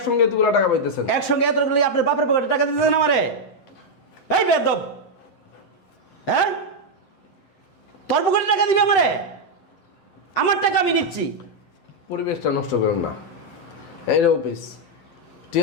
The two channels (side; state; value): right; late; 7.7 ms